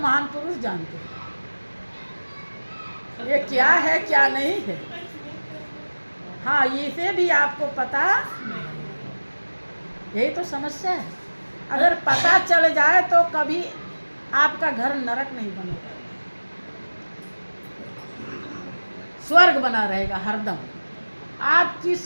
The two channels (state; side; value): inverted; both; correlation -1.00